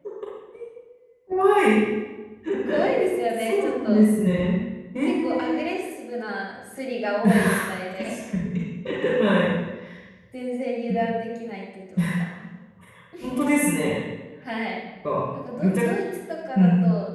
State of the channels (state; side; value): identical; both; correlation 1.00